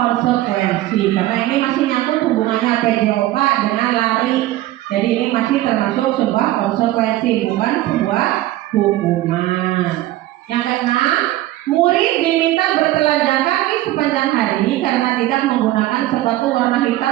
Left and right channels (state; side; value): quieter; left; 15.6 dB